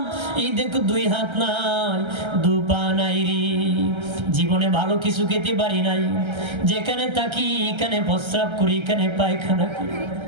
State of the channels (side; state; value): left; late; 1.3 ms